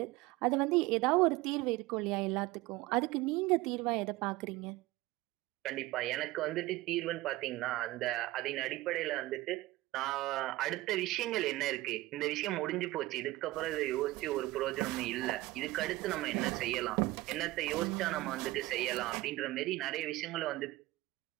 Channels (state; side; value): quieter; left; 18.7 dB